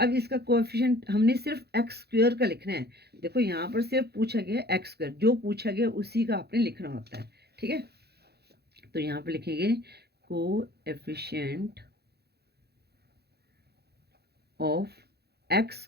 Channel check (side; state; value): left; late; 0.47 ms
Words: इसका कोएफिशिएंट हमने सिर्फ एक्स स्क्वायर का लिखना है। देखो यहाँ पर सिर्फ पूछा गया एक्स स्क्वायर, जो पूछा गया उसी का आपने लिखना होता है। ठीक है, तो यहाँ पे लिखेंगे कोएफिशिएंट ऑफ एक्स